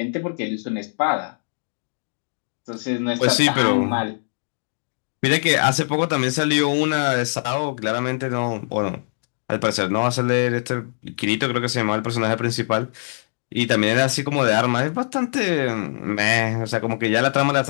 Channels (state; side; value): silent; right; digital silence